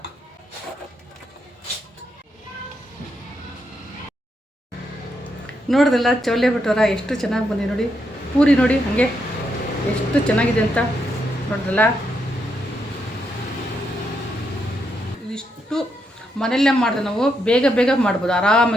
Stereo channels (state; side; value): normal; both; correlation 0.80